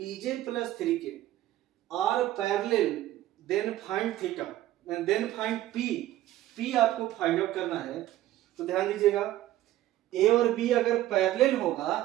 plus 3k are parallel, then find theta, then find p आपको find out करना है। तो ध्यान दीजिएगा, ए और बी अगर पैरेलल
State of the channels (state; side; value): quieter; left; 14.3 dB